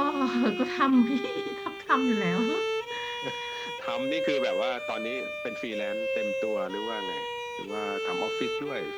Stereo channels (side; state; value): both; identical; correlation 1.00